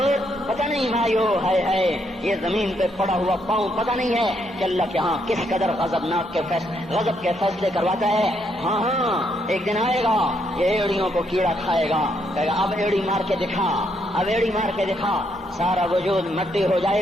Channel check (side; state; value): both; normal; correlation 0.75